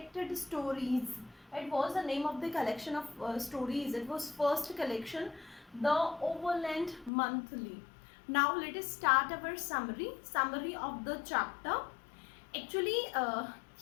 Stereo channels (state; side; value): drops out; right; at 7.1 s